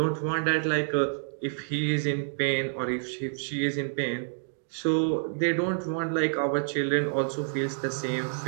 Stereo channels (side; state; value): left; silent; digital silence